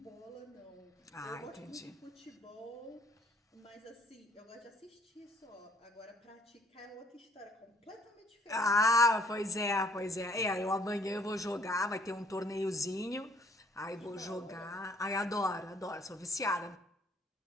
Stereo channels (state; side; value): normal; both; correlation 0.61